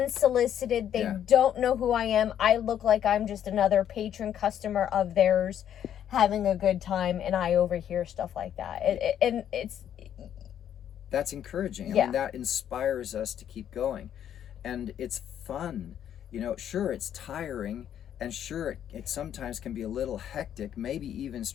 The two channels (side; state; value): right; quieter; 9.9 dB